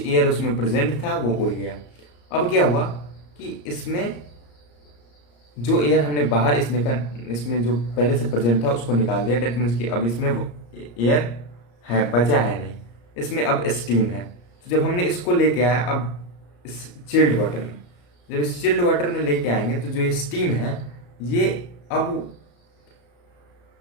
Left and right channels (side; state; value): right; late; 34 ms